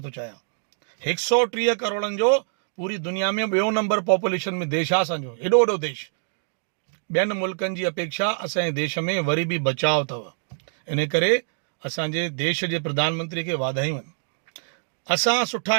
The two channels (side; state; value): left; silent; digital silence